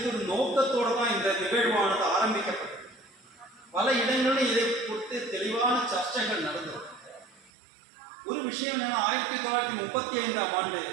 ஒரு நோக்கத்தோடு தான் இந்த நிகழ்வானது ஆரம்பிக்கப்பட்டது. பல இடங்களில் இதை குறித்து தெளிவான சர்ச்சைகள் நடந்தது. ஒரு விஷயம் என்னன்னா, 1935ஆம் ஆண்டு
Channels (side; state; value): left; drops out; at 7.5 s